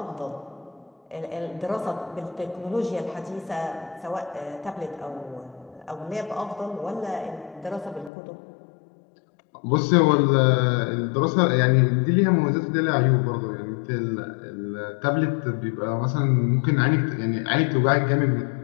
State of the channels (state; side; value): drops out; right; at 8.1 s